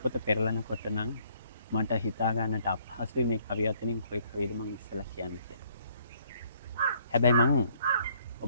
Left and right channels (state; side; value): inverted; both; correlation -0.65